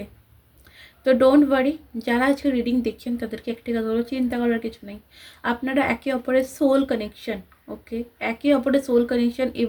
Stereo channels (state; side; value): identical; both; correlation 1.00